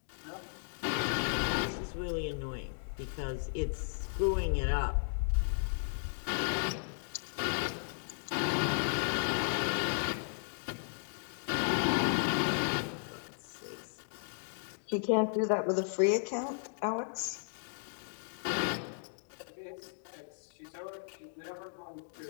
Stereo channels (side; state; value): right; silent; digital silence